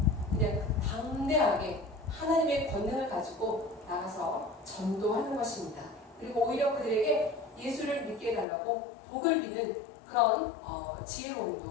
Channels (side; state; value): right; drops out; at 8.5 s